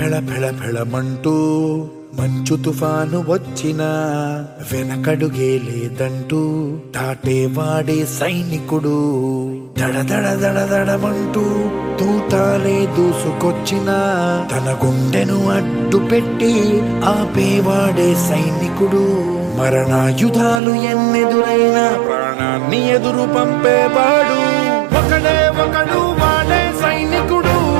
ఫెళ ఫెళమంటూ మంచు తుఫాను వచ్చినా వెనకడుగే లేదంటూ దాటేవాడే సైనికుడు. దడ దడ దడ దడమంటూ తూటాలే దూసుకొచ్చినా తన గుండెను అడ్డు పెట్టి ఆపేవాడే సైనికుడు. మరణాయుధాలు ఎన్నెదురైనా ప్రాణాన్ని ఎదురు పంపేవాడు ఒకడే ఒకడు, వాడే సైనికుడు.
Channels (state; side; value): drops out; left; at 20.6 s